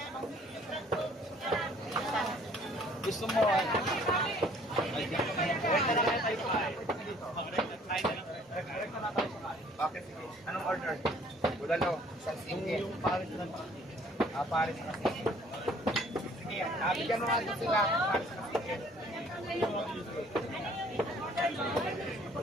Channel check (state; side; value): normal; both; correlation 0.57